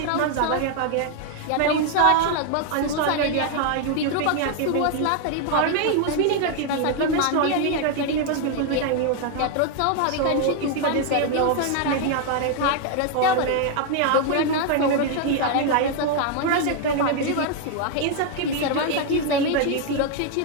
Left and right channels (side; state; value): both; different; correlation 0.00